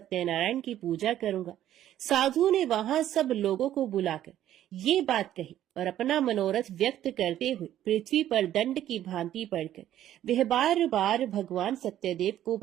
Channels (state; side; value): quieter; left; 12.1 dB